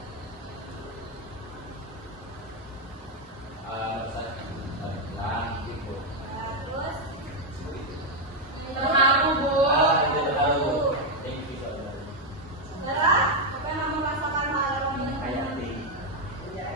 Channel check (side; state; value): both; normal; correlation 0.03